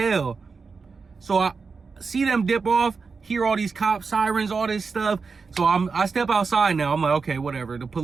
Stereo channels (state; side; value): quieter; left; 4.9 dB